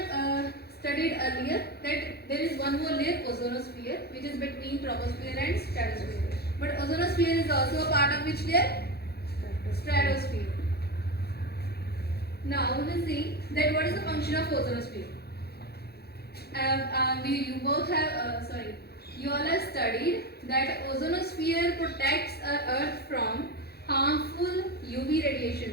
studied earlier that there is one more layer, ozonosphere, which is between troposphere and stratosphere. But ozonosphere is also a part of which layer? Stratosphere. Now we will see that what is the function of ozonosphere. You all have studied that ozonosphere protects our Earth from harmful UV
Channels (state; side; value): late; right; 0.46 ms